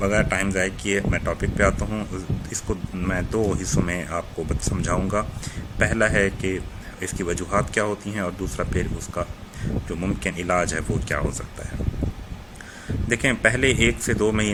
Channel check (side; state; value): both; identical; correlation 1.00